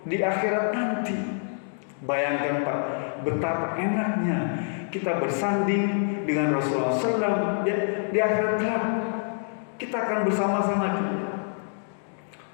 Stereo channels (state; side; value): silent; right; digital silence